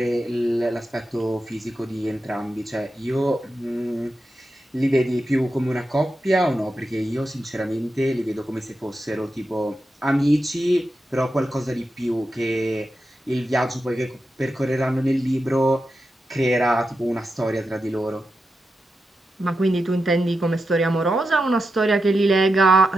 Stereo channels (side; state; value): both; normal; correlation 0.89